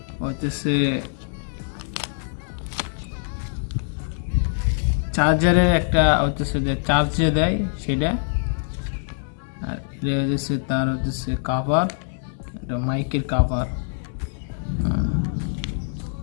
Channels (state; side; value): silent; right; 63 dB below the other